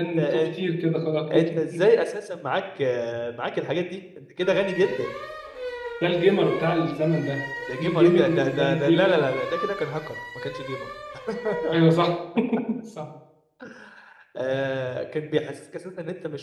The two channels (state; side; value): identical; both; correlation 1.00